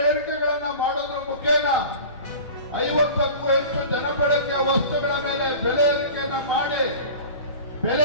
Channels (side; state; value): both; inverted; correlation -0.38